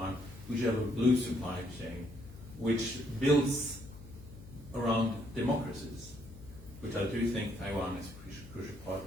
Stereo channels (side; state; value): left; noise; hum, 17 dB below the sound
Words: we should have a blue supply chain which builds around democracies, which I do think Taiwan is a crucial part.